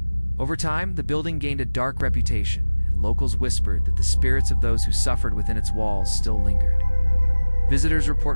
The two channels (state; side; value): inverted; both; correlation -1.00